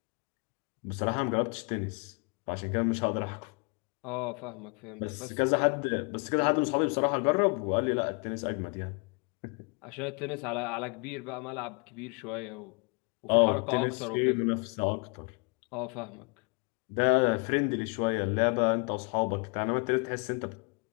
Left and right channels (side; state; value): right; quieter; 34.2 dB